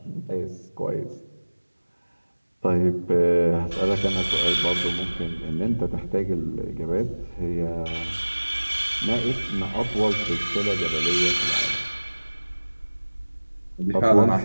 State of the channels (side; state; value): both; inverted; correlation -1.00